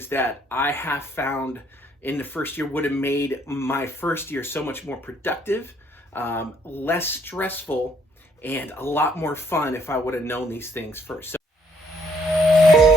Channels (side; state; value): both; normal; correlation 0.66